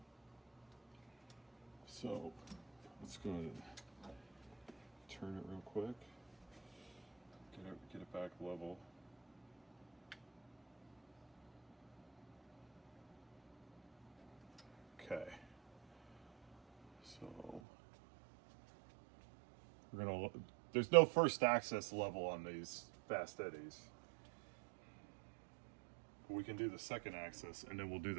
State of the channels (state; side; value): drops out; left; at 17.6 s